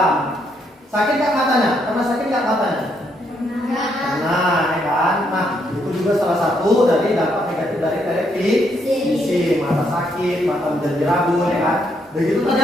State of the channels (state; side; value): normal; both; correlation 0.75